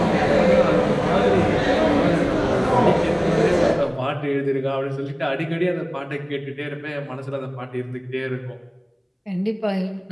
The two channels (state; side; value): identical; both; correlation 1.00